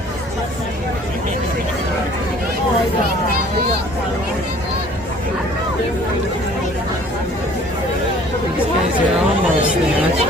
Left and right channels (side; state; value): both; normal; correlation 0.53